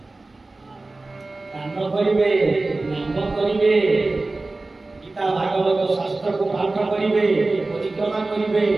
ଦାନ କରିବେ ନାମ କରିବେ ଗୀତା ଭାଗବତ ଶାସ୍ତ୍ରକୁ ପାଠ କରିବେ ପରିକ୍ରମା କରିବେ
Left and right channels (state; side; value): quieter; left; 3.2 dB